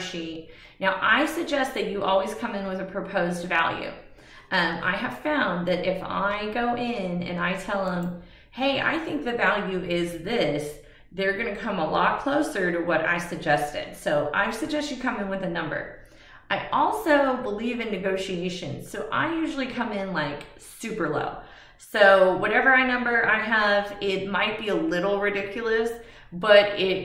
Now, I suggest that you always come in with a proposed value. I have found that if I go in and I tell them, hey, I think the value is this, they're going to come a lot closer to what I suggested. So I suggest you come in with a number. I also believe in negotiations. So I usually come in like super low. So whatever number I have, it might be a little ridiculous, but it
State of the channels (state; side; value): identical; both; correlation 1.00